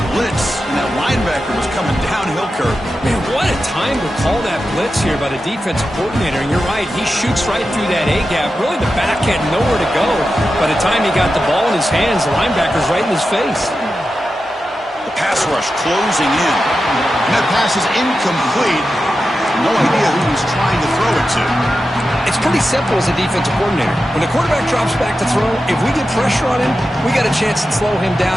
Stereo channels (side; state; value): both; normal; correlation 0.91